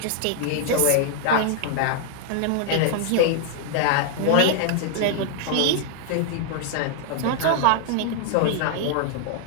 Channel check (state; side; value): different; both; correlation -0.01